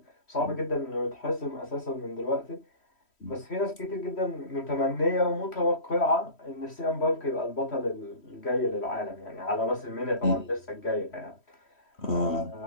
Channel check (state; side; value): late; right; 3.1 ms